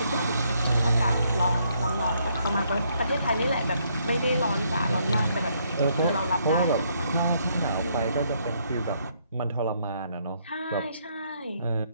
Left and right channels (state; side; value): inverted; both; correlation -0.71